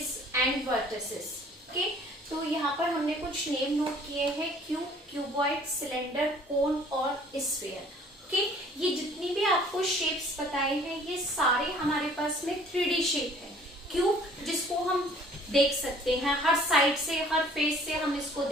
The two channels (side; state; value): both; normal; correlation 0.54